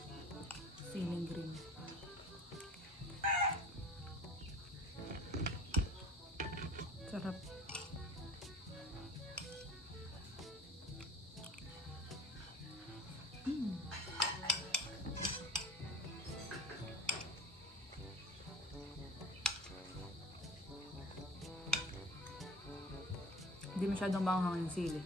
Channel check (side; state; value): both; normal; correlation 0.43